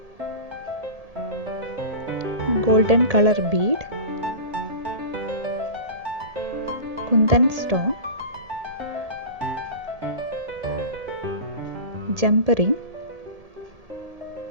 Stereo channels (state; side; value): late; left; 1.7 ms